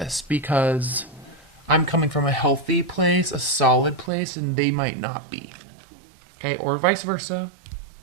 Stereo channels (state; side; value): drops out; left; at 4.1 s